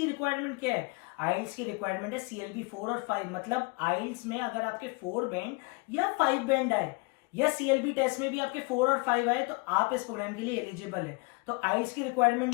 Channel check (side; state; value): right; quieter; 28.0 dB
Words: रिक्वायरमेंट क्या है। आइल्स की रिक्वायरमेंट है CLB 4 और 5। मतलब आइल्स में अगर आपके 4 बैंड या 5 बैंड आए, या CLB टेस्ट में भी आपके 4 और 5 आए, तो आप इस प्रोग्राम के लिए एलिजिबल है। तो आइल्स की रिक्वायरमेंट